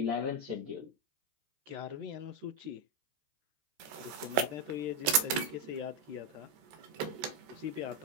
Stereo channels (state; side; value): late; left; 14 ms